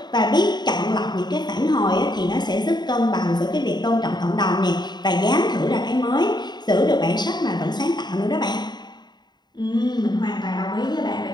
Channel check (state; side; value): late; right; 0.21 ms